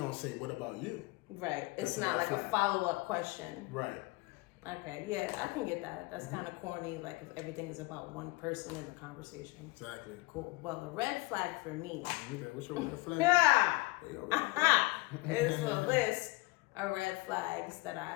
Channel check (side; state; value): right; quieter; 23.4 dB